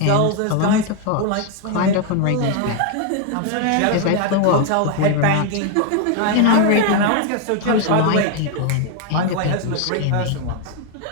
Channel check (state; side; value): different; both; correlation 0.01